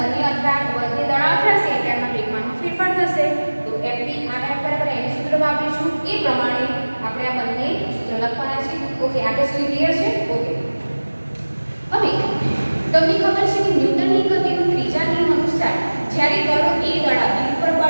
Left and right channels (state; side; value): inverted; both; correlation -1.00